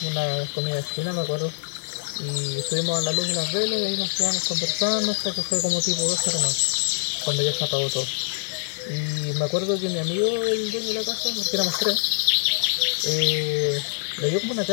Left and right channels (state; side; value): silent; right; 56 dB below the other